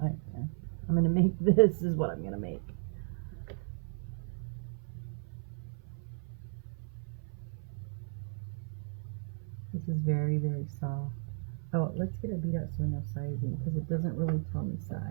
gonna make this is what I'm gonna make. This is very, very soft. Oh, let's get our bead out so we know sizing, because it doesn't really tell me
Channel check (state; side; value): silent; left; 55 dB below the other